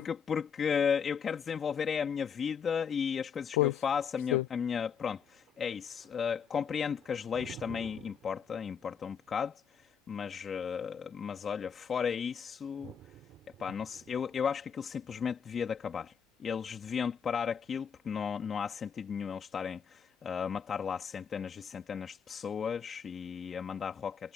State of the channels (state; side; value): quieter; right; 7.0 dB